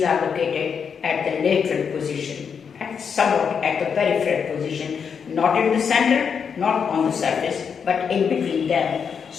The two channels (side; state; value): right; quieter; 6.6 dB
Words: are located at the lateral position, and somewhat at the peripheral position, not in the center, not on the surface, but in between them.